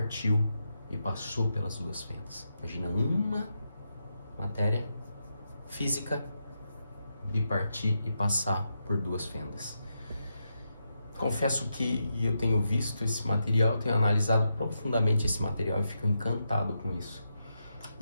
e passou pelas duas fendas. Imagina uma matéria física bipartir e passar por duas fendas. Confesso que eu tenho visto esse material, tenho analisado profundamente esse material e fico encantado com isso.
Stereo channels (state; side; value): inverted; both; correlation -0.85